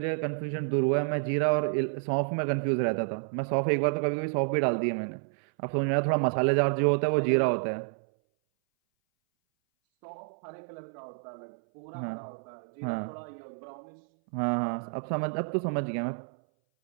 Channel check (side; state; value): left; silent; 58 dB below the other